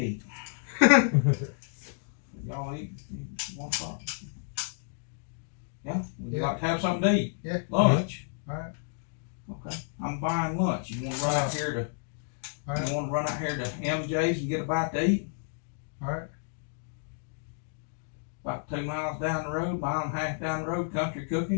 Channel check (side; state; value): right; silent; digital silence